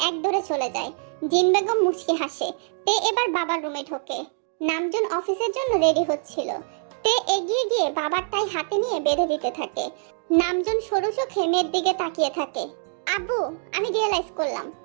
এক দৌড়ে চলে যায়। জিন বেগম মুচকি হাসে। তে এবার বাবার রুমে ঢোকে। নামজুন অফিসের জন্য রেডি হচ্ছিল। তে এগিয়ে গিয়ে বাবার টাই হাতে নিয়ে বেঁধে দিতে থাকে। নামজুন সরু চোখে মেয়ের দিকে তাকিয়ে থাকে। আব্বু, আমি রিয়েলাইজ করলাম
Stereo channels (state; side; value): silent; left; 62 dB below the other